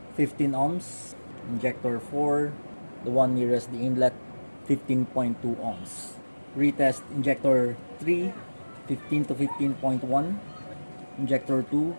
15 ohms, injector 4, the one nearest the inlet, 15.2 ohms. Retest injector 3, 15 to 15.1, injector 2,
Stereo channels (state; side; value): inverted; both; correlation -1.00